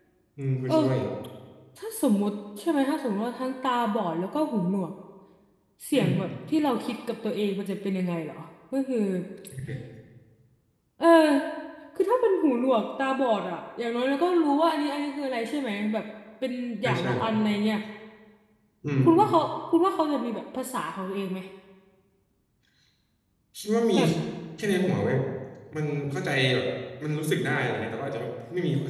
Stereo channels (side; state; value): both; identical; correlation 1.00